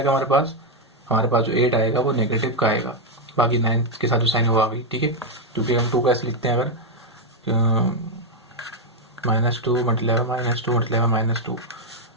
हमारे पास जो 8 आएगा वो नेगेटिव का आएगा, बाकी 9 के साथ जो साइन हुआ आ गई। ठीक है, क्योंकि हम 2 का ऐसे लिखते हैं, अगर -2 मल्टीप्लाई -2 मल्टीप्लाई -2,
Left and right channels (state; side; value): normal; both; correlation 0.02